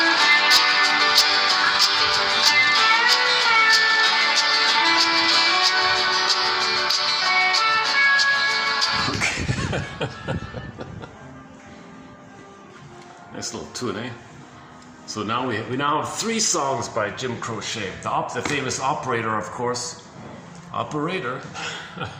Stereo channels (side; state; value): both; identical; correlation 1.00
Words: Nice little tune, eh? So now we now have 3 songs by Jim Crochet. The famous Operator, of course. Operator.